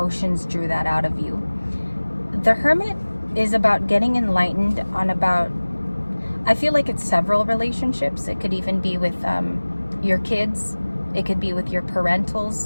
drew that out of you. The Hermit is about getting enlightened on about, I feel like it's several relationships. It could even be with your kids. It could be with your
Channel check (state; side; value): inverted; both; correlation -1.00